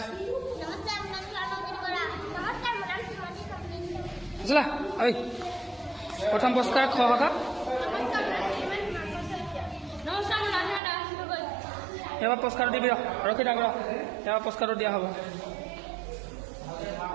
আছিলা ঐ প্ৰথম পুৰস্কাৰ খ শাখা এবাৰ পুৰস্কাৰটো দিবি ৰখি থাক এবাৰ পুৰস্কাৰটো দিয়া হ'ব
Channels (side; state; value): left; drops out; at 10.8 s